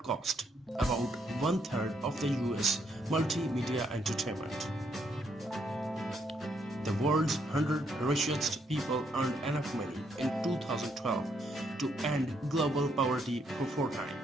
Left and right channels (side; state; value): both; normal; correlation 0.74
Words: about 1/3 of the US multimedia entertainment. The world's 100 richest people earned enough money in 2012 to end global poverty for 4